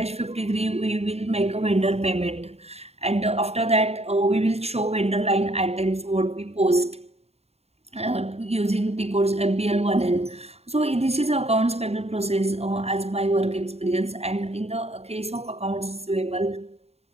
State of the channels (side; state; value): left; late; 0.30 ms